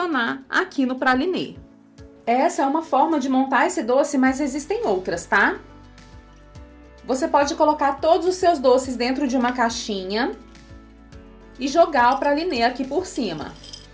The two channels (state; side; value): identical; both; correlation 1.00